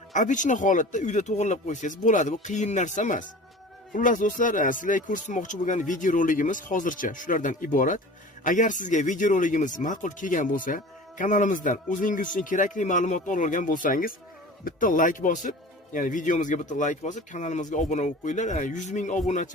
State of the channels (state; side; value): normal; both; correlation 0.39